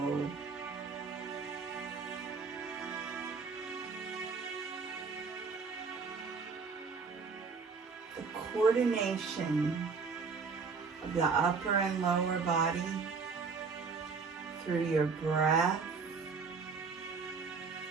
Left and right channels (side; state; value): left; quieter; 5.0 dB